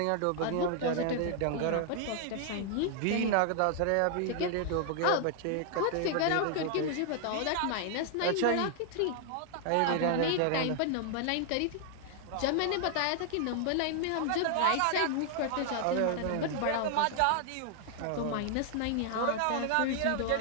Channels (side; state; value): both; different; correlation 0.00